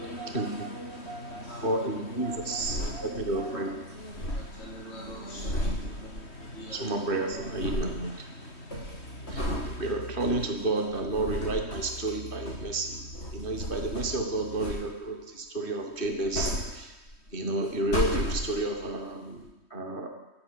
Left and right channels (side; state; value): right; late; 3.1 ms